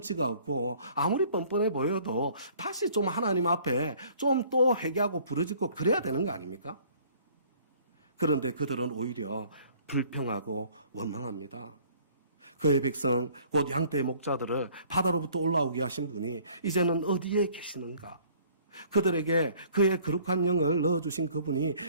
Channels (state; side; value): inverted; both; correlation -0.56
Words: 없고 아무리 뻔뻔해 보여도 다시 좀 하나님 앞에 좀 또 회개하고 부르짖고 그래야 되는 거 아닙니까? 그런데 그들은 오히려 불평하고 원망합니다. 그의 백성 곧 양떼의 목자들을 바다로부터 올라오게 하신 분이 이제는 어디에 계시는가? 그들에게 그의 거룩한 영을 넣어주신 그분이